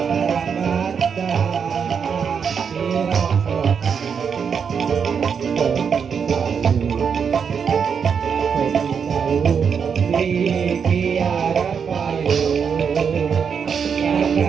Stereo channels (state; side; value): quieter; left; 6.7 dB